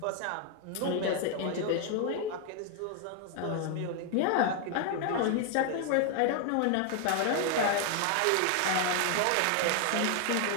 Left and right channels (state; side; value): different; both; correlation 0.00